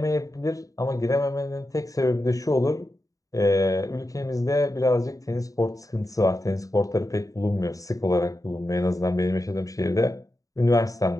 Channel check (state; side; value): late; right; 0.16 ms